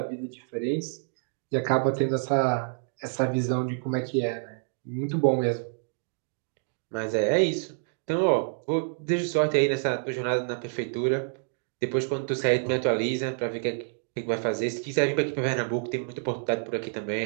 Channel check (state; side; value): silent; left; digital silence